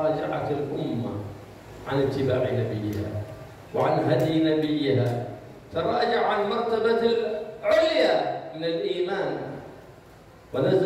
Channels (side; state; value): both; identical; correlation 1.00